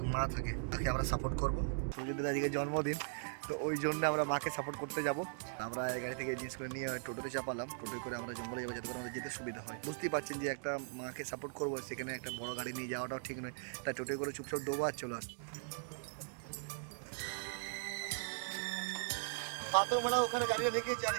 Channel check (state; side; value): silent; left; digital silence